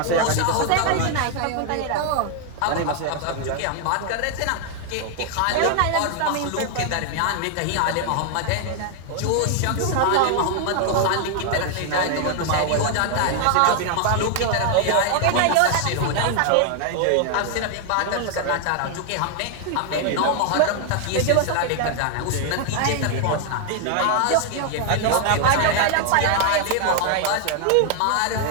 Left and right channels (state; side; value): different; both; correlation 0.01